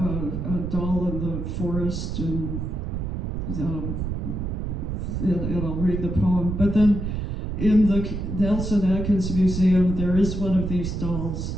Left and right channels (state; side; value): noise; right; rumble, 3 dB below the sound